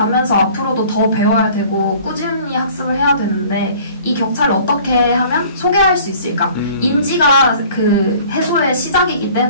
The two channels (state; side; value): inverted; both; correlation -0.50